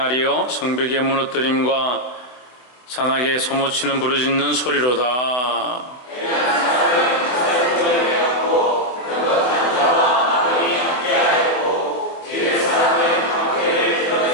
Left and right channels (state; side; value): late; right; 24 ms